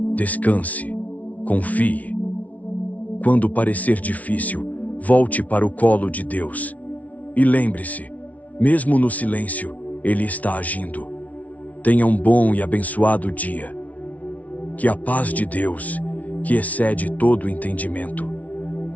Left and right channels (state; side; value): late; right; 0.070 ms